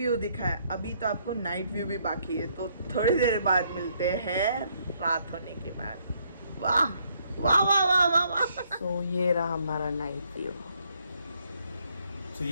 दिखा है, अभी तो आपको नाइट व्यू भी बाकी है। तो थोड़ी देर बाद मिलते हैं रात होने के बाद। वाह वाह वाह वाह वाह वाह। तो ये रहा हमारा नाइट व्यू। तो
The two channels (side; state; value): both; inverted; correlation -0.70